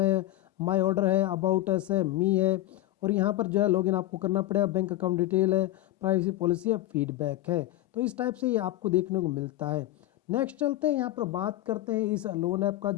माय ऑर्डर है, अबाउट अस है, मी है, और यहाँ पर जो है लॉगिन आपको करना पड़ेगा, बैंक अकाउंट डिटेल है, प्राइवेसी पॉलिसी है, फीडबैक है। तो इस टाइप से ये आपको देखने को मिलता है। नेक्स्ट चलते हैं, यहाँ पर बात करते हैं इस लोन ऐप का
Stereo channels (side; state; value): right; quieter; 15.4 dB